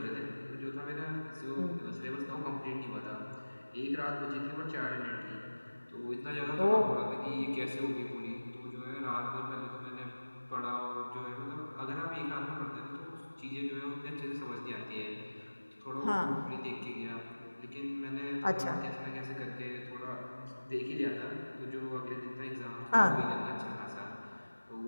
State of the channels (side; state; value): both; inverted; correlation -1.00